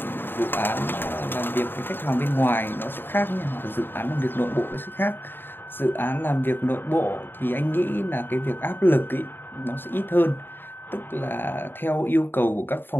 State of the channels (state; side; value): late; right; 0.097 ms